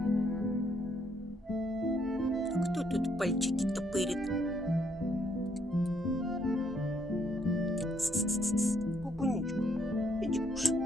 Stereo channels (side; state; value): both; normal; correlation 0.71